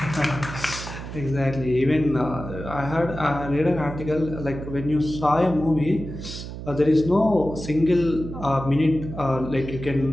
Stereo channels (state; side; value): noise; right; hum, 9 dB below the sound